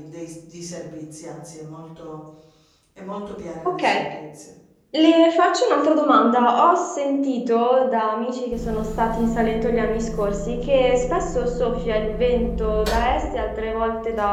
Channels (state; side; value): identical; both; correlation 1.00